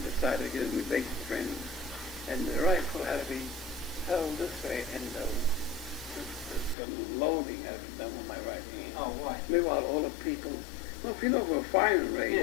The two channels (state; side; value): drops out; right; at 6.8 s